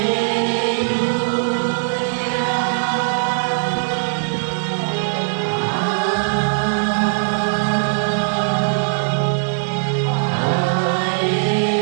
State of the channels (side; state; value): left; silent; digital silence